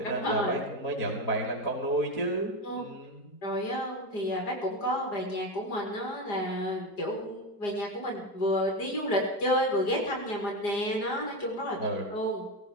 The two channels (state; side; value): late; right; 4.9 ms